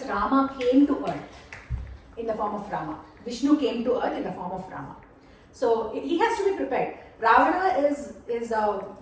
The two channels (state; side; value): identical; both; correlation 1.00